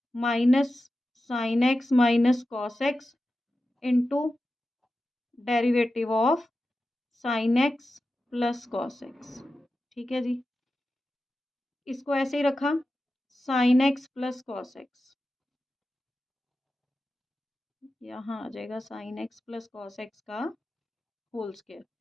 minus sine x minus cos x into derivative of sine x plus cos x. ठीक है जी, इसको ऐसे ही रखा, sign x plus cos x, यहाँ आ जाएगा sine x plus cos x का होल स्क्वायर।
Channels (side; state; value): both; normal; correlation 0.92